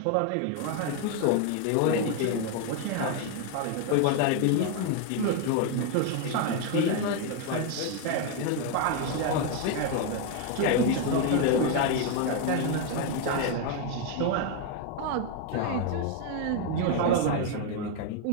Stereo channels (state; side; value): different; both; correlation 0.01